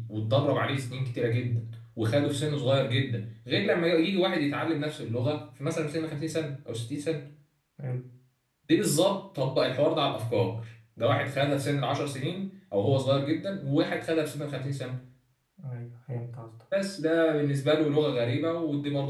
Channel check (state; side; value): identical; both; correlation 1.00